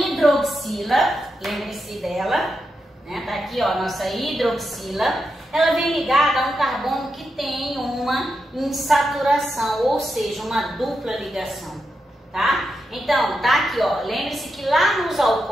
lembre-se dela, né? Tá aqui, ó, nossa hidroxila. Ela vem ligada a um carbono que tem uma insaturação, ou seja, uma dupla ligação, tá? Então, tá aqui, ó, lembre-se que lá nos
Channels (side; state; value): both; normal; correlation 0.86